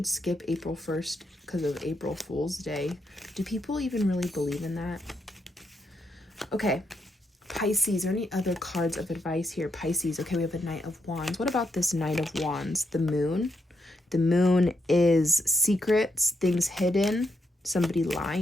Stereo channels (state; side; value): normal; both; correlation 0.80